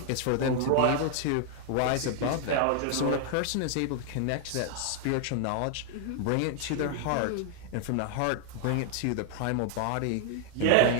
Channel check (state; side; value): different; both; correlation 0.00